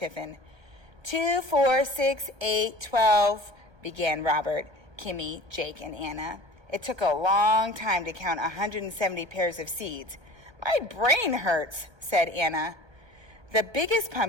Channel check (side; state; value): left; late; 1.3 ms